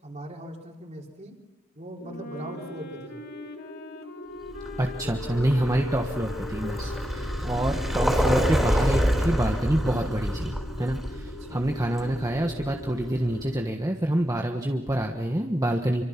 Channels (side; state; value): both; normal; correlation 0.87